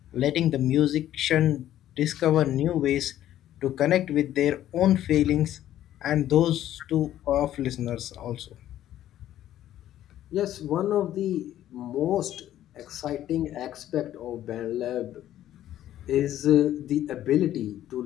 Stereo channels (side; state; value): right; quieter; 12.4 dB